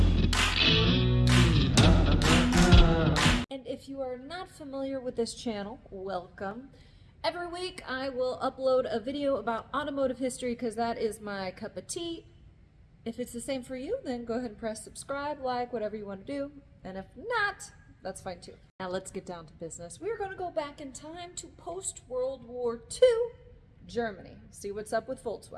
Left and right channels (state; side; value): identical; both; correlation 1.00